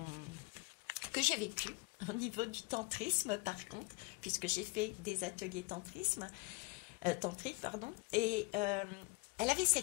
que j'ai vécu au niveau du tantrisme, par contre, puisque j'ai fait des ateliers tantriques, pardon, et elle avait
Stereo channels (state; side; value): quieter; right; 25.9 dB